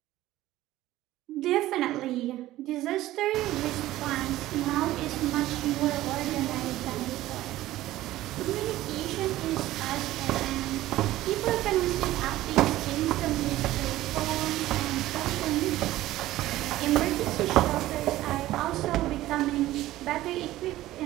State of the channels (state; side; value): quieter; left; 15.5 dB